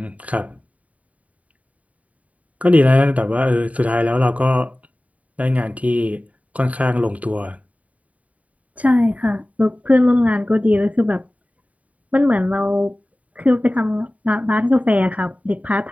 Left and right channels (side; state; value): left; late; 0.069 ms